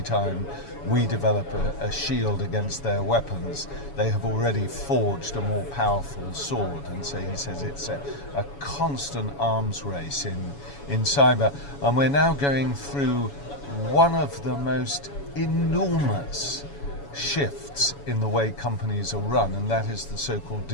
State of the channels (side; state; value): right; late; 7.1 ms